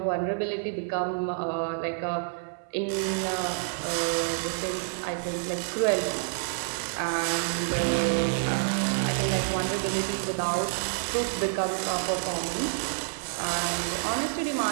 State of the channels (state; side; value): silent; left; 59 dB below the other